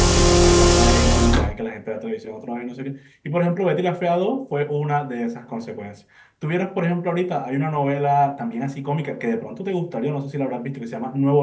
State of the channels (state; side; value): identical; both; correlation 1.00